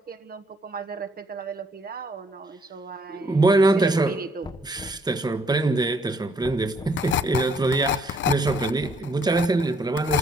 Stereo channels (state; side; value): normal; both; correlation 0.66